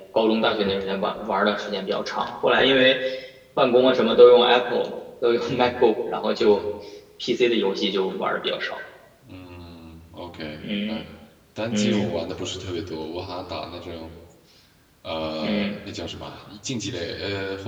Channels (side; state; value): both; identical; correlation 1.00